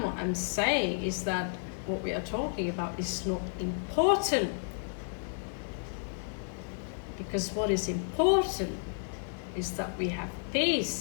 what I'm saying, is that what we are talking about is not important. Because what is important is that we have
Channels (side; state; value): right; silent; 56 dB below the other